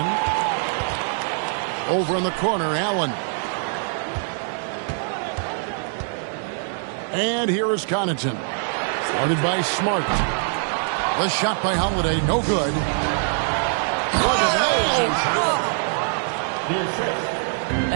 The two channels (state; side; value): silent; left; 61 dB below the other